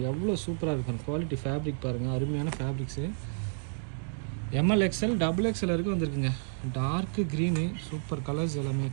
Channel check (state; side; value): silent; left; digital silence